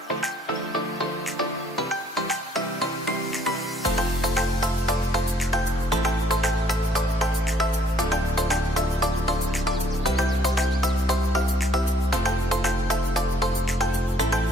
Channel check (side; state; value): both; normal; correlation 0.63